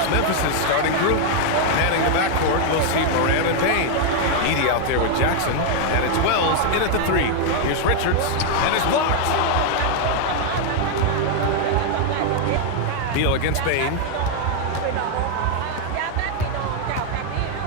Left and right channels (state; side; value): different; both; correlation 0.00